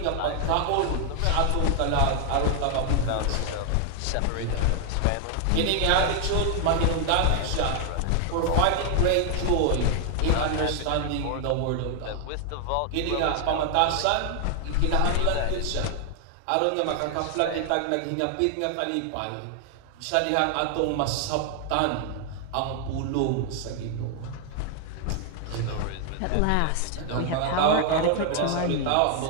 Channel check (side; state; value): both; different; correlation 0.00